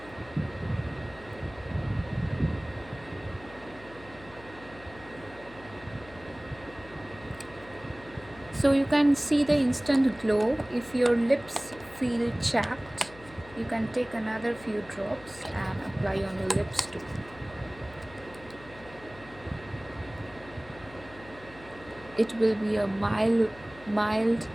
So you can see the instant glow. If your lips feel chapped, you can take another few drops and apply on your lips too. It will be a mild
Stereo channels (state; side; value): noise; left; hum, 20 dB below the sound